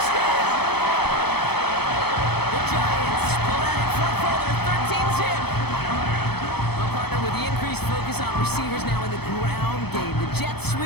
The Giants pull out in front for their 13-zip. Well, partner, with the increased focus on receivers now in the ground game, the jet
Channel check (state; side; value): late; right; 0.97 ms